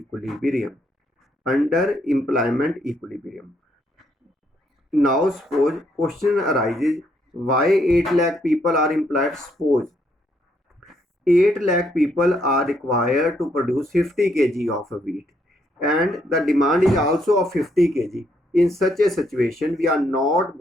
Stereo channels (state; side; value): normal; both; correlation 0.73